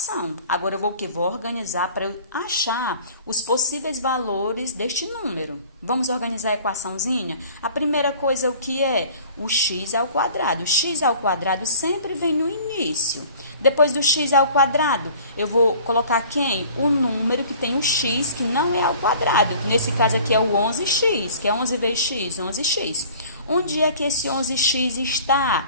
Agora, eu vou o quê? Vou organizar para eu achar os possíveis valores deste número. Vamos organizar a equaçãozinha? A primeira coisa, o que é? O x ao quadrado. O x ao quadrado sempre vem no início. Depois do x ao quadrado, eu vou colocar quem? O número que tem o x, que não é ao quadrado. Nesse caso aqui é o 11x, que é 11 vezes x, 11x. Onde é que esse 11x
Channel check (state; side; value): inverted; both; correlation -0.48